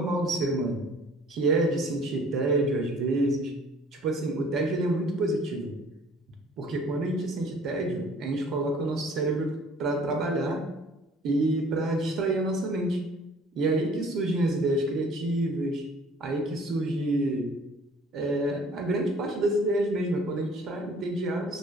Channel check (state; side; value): normal; both; correlation 0.53